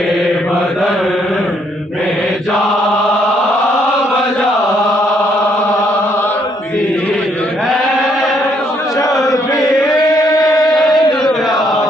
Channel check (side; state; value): both; normal; correlation 0.70